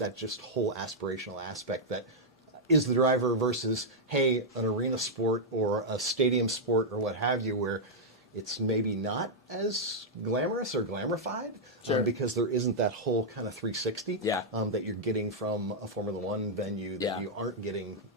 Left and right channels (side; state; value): both; normal; correlation -0.05